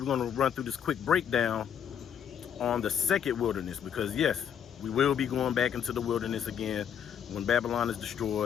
going to run through this quick breakdown on the second wilderness, because yes, we will be going back into the wilderness again. When Babylon is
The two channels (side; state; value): right; quieter; 8.5 dB